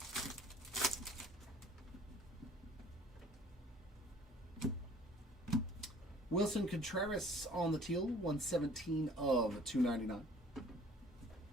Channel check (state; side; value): normal; both; correlation 0.53